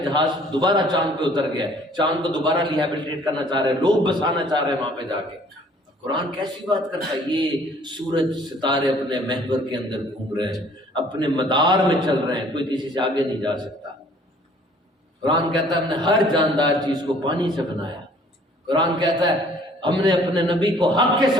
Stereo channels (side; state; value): both; normal; correlation 0.56